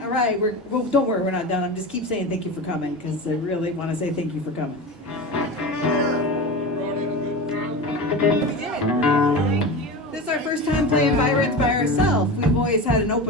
All right, well, don't worry, we're not done. I'm just keep saying thank you for coming because I really want to say thank you for coming. We did. Thank you. This is our first time playing Byron's by ourselves. We've always had an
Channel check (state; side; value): normal; both; correlation 0.26